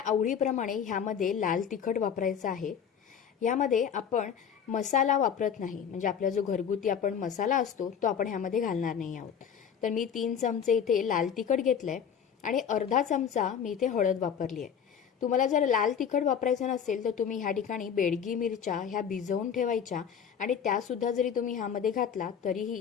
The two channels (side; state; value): right; quieter; 7.8 dB